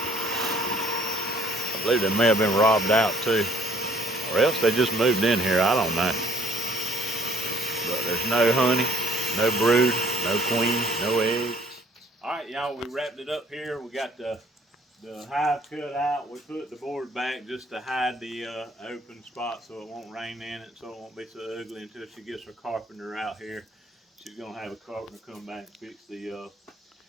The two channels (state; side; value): normal; both; correlation 0.60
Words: I believe they may have been robbed out too. Or else they just moved in here, I don't know. But there's no honey, no brood, no queen, no eggs. Alright y'all, we wrapped it up here. We got the hive cut out. We put the board back just to hide the open spot so it won't rain in it, so it won't be so ugly until she gets her carpenter out here. She's gonna have a carpenter come back and fix the